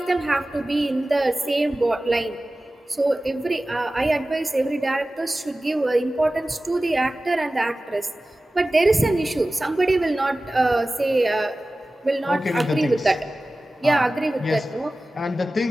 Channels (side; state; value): both; normal; correlation 0.96